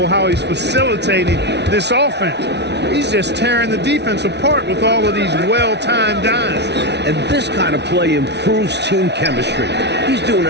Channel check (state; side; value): late; left; 0.50 ms